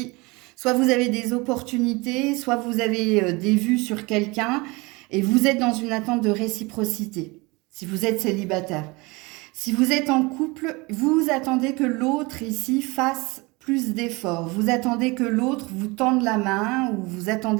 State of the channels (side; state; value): left; quieter; 25.2 dB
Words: soit vous avez des opportunités, soit vous avez des vues sur quelqu'un et vous êtes dans une attente de réciprocité. Si vous êtes célibataire. Si vous êtes en couple, vous attendez que l'autre ici fasse plus d'efforts. Vous attendez que l'autre vous tende la main ou vous